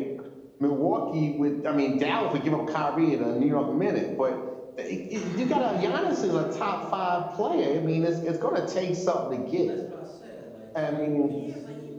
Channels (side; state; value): both; identical; correlation 1.00